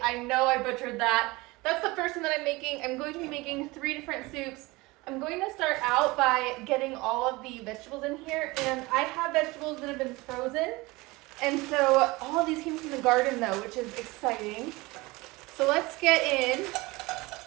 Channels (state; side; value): quieter; left; 22.5 dB